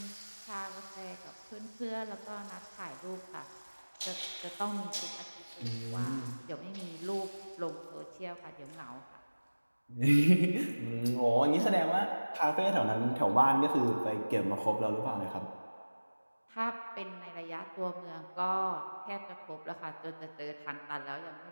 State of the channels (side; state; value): both; inverted; correlation -1.00